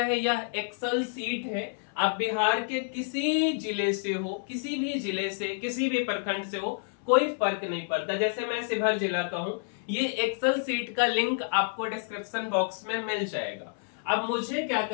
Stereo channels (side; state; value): right; silent; 59 dB below the other